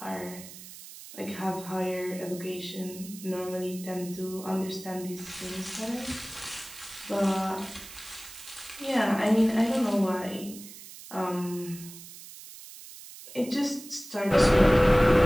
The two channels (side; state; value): right; noise; hiss, 15 dB below the sound